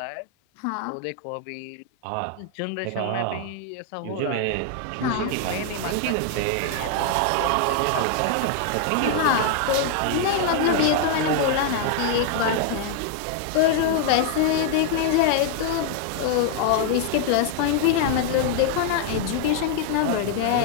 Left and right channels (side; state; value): both; different; correlation 0.00